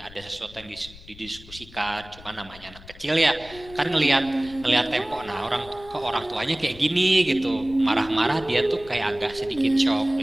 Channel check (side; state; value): left; noise; rumble, 19 dB below the sound